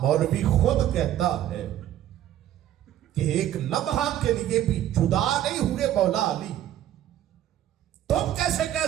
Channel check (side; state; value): left; quieter; 12.1 dB